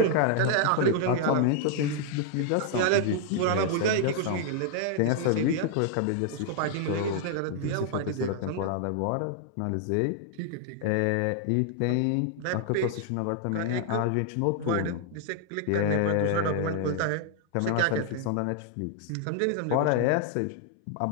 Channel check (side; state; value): both; different; correlation 0.00